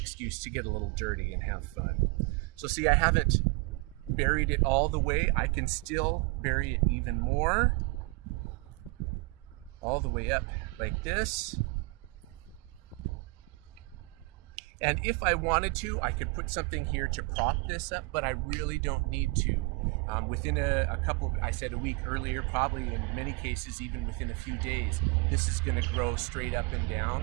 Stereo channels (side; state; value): left; quieter; 26.7 dB